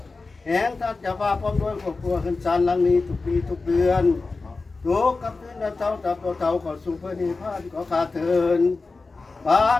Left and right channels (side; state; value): right; quieter; 3.9 dB